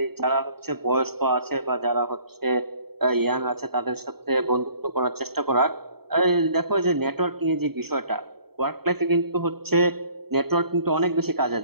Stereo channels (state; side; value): late; left; 0.96 ms